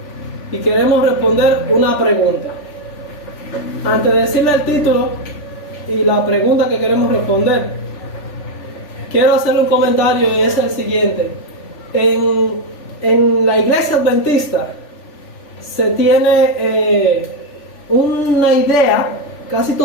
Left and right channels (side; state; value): right; late; 3.4 ms